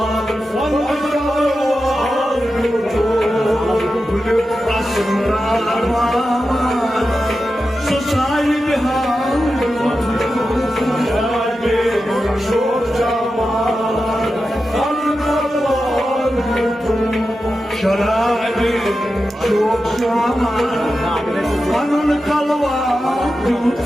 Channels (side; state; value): both; normal; correlation 0.91